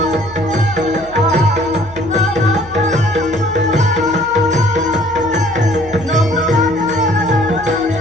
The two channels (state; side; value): noise; right; hum, 20 dB below the sound